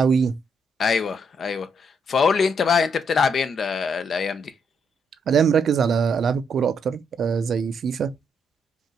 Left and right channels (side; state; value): both; normal; correlation 0.75